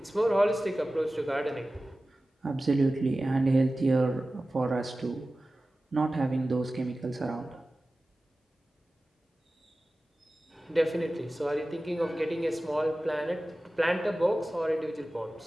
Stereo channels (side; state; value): both; normal; correlation 0.96